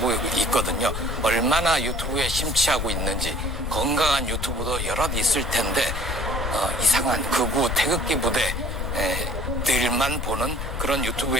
있거든요. 얼마나 유튜브에 심취하고 있는지 건강한 유튜브도 여럿 있을 텐데 이상한 극우 태극기 부대들만 보는 그런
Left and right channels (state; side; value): noise; left; rumble, 3 dB below the sound